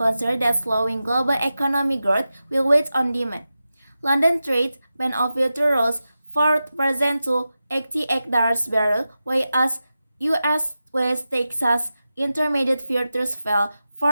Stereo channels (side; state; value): both; inverted; correlation -0.93